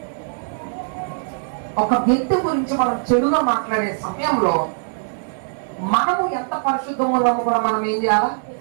ఒక వ్యక్తి గురించి మనం చెడుగా మాట్లాడే సమయంలో మనము ఎంత పరిశుద్ధంగా ఉన్నామో కూడా మనం ఏం చేయాలా?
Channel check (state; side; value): silent; left; 65 dB below the other